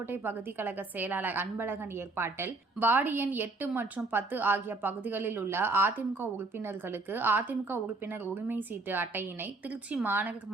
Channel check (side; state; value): left; quieter; 3.4 dB